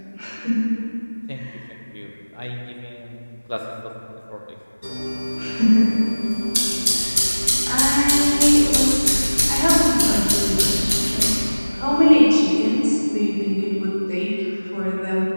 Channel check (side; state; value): both; inverted; correlation -1.00